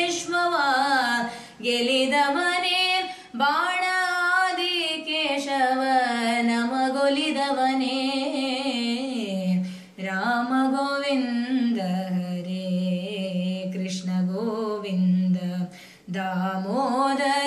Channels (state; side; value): identical; both; correlation 1.00